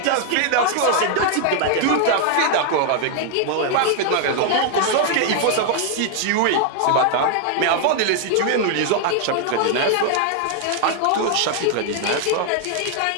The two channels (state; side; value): different; both; correlation 0.00